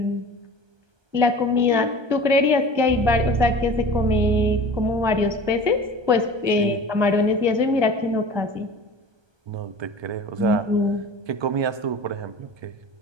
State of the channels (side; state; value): left; late; 1.3 ms